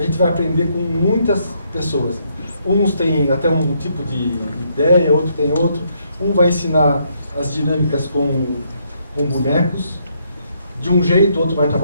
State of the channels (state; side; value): inverted; both; correlation -0.73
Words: gente vai aprender com muitas pessoas. Uns têm até um tipo de ideia, outro tem outro. Um vai ensinar as dinâmicas com bonecos, de um jeito, outro vai